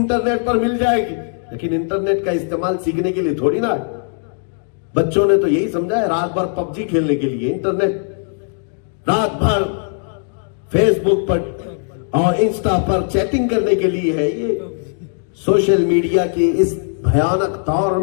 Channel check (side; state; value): right; silent; 59 dB below the other